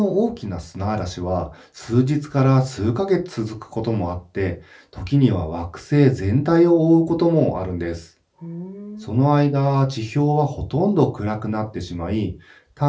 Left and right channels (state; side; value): identical; both; correlation 1.00